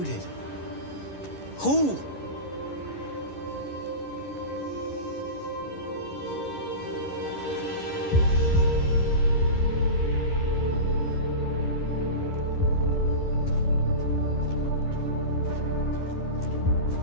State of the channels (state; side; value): late; right; 11 ms